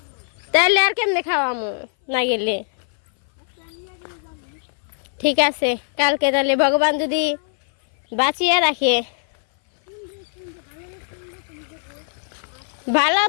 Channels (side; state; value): right; silent; 58 dB below the other